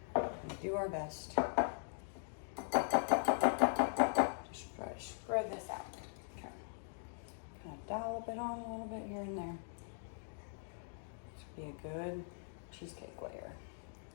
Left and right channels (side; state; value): right; silent; digital silence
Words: gonna do our best. Just try to spread this out. Okay. Kind of dollop it on a little bit here and there. This would be a good cheesecake layer.